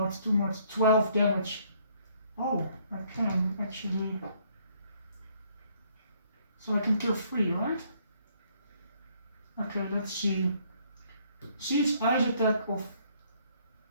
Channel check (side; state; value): both; inverted; correlation -0.65